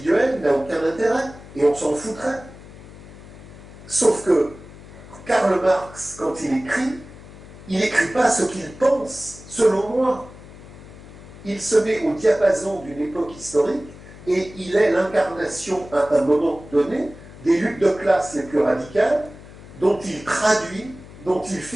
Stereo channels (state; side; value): noise; left; hum, 18 dB below the sound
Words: n'a aucun intérêt, et on s'en foutrait. Sauf que Karl Marx, quand il n'écrit pas ce qu'il pense, selon moi. Il se met au diapason d'une époque historique, et il est l'incarnation, à un moment donné, des luttes de classe les plus radicales, dont il traduit, dont il